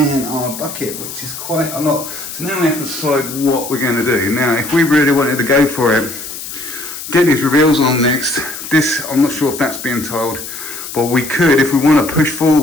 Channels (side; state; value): left; noise; hiss, 10 dB below the sound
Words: our bucket, which is quite a lot. So now we have to decide what we're going to do. Now, if we really wanted to go for it, get these reveals on next. This, I'm not sure if that's being told, but we could, if we want to push